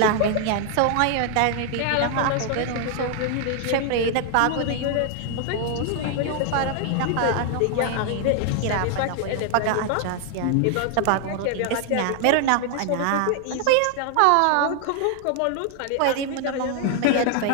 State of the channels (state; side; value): different; both; correlation 0.00